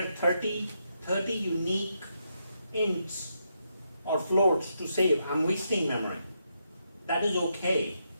30 unique ints or floats to save, I'm wasting memory. That is okay.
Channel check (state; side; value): inverted; both; correlation -0.81